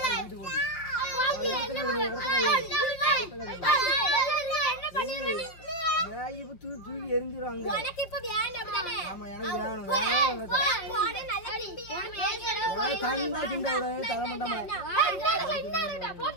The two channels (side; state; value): right; late; 5.9 ms